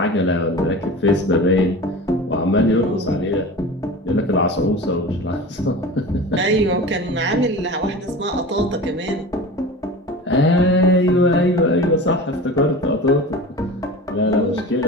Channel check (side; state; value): both; normal; correlation 0.34